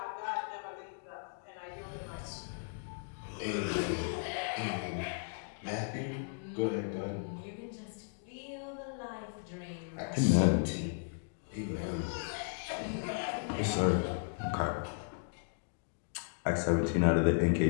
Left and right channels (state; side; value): silent; right; digital silence